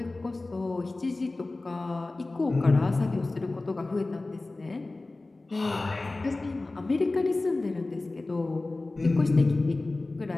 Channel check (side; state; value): right; quieter; 3.1 dB